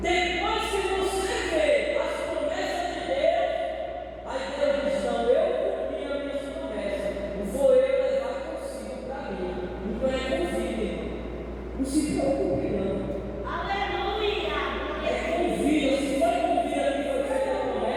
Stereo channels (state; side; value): identical; both; correlation 1.00